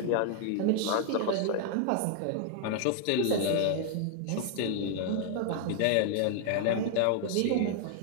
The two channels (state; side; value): different; both; correlation 0.00